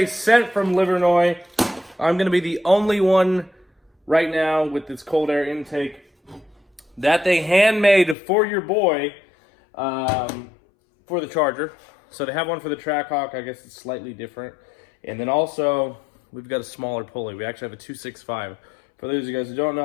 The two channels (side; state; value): right; drops out; at 8.2 s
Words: sent from Livernois. I'm going to be the only one right now with this cold air intake that they handmade for your boy for the Charger. So they have one for the Trackhawk. I guess it's slightly different. And then also, we've got a smaller pulley. We actually have a 265. For those of you guys who don't